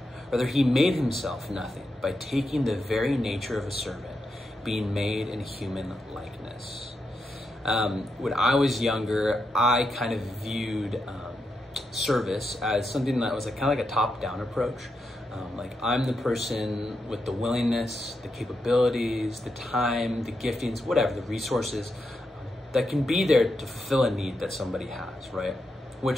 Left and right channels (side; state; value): both; normal; correlation 0.85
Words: Rather, he made himself nothing by taking the very nature of a servant, being made in human likeness. When I was younger, I kind of viewed service as something that was kind of like a top-down approach. Like I'm the person with the willingness, the capabilities, the time, the giftings, whatever, the resources that can be there to fulfill a need that somebody has, right?